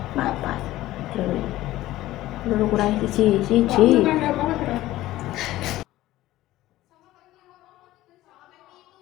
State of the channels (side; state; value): right; quieter; 15.8 dB